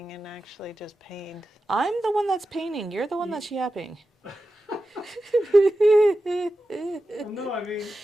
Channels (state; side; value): normal; both; correlation 0.92